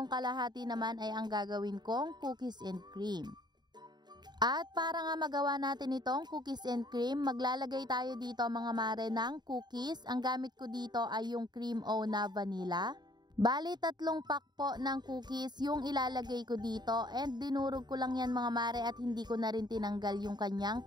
kalahati naman ay ang gagawin kong cookies and cream. At para nga magawa natin itong cookies and cream, maglalagay tayo dito mga mare ng cookies. Ang gamit ko dito ay yung cream o na vanilla. Bali 3 pack po ng cookies yung ilalagay ko dito and dinurog ko lang yan mga mare at hindi ko na rin tinanggal yung kanyang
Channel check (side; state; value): left; late; 0.21 ms